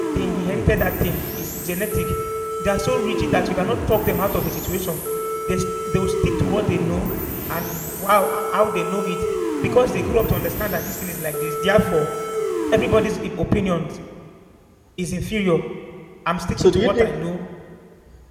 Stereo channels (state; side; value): identical; both; correlation 1.00